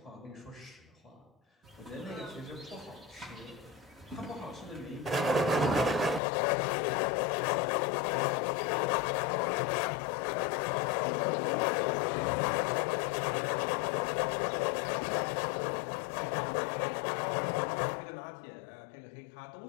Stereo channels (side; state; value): right; drops out; at 6.2 s